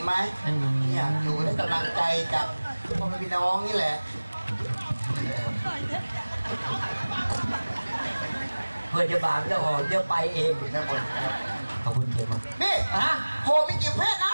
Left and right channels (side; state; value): both; inverted; correlation -1.00